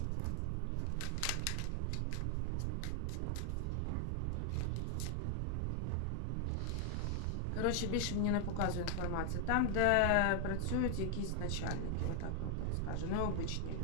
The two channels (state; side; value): different; both; correlation 0.00